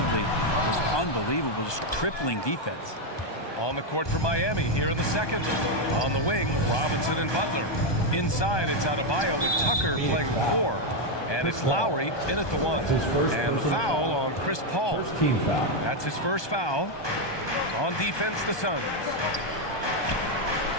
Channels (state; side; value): late; right; 1.2 ms